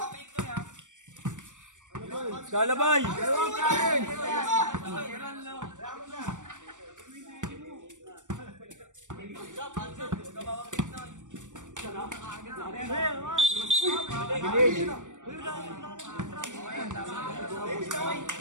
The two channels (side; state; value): left; late; 0.86 ms